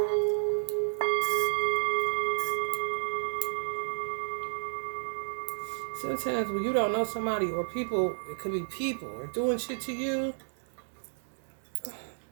Sometimes when you don't know somebody or people, it could be people or doing shit to you,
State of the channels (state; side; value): silent; left; digital silence